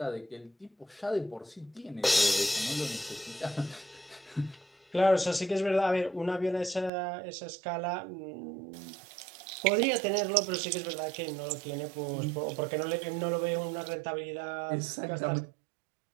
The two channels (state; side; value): drops out; left; at 6.9 s